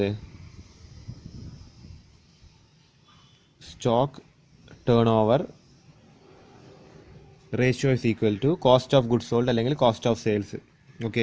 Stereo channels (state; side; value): identical; both; correlation 1.00